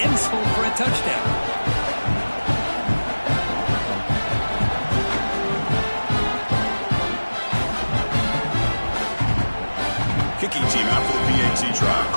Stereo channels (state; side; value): inverted; both; correlation -1.00